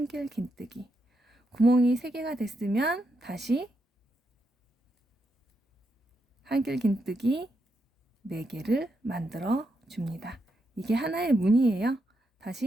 긴뜨기. 구멍이 3개가 됐으면 다시 한길 긴뜨기 4개를 만들어 줍니다. 이게 하나의 문이에요.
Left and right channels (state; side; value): normal; both; correlation 0.82